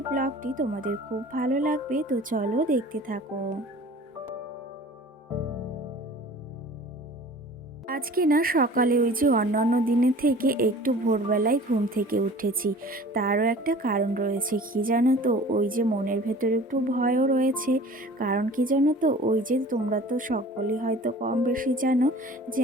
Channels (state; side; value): normal; both; correlation 0.45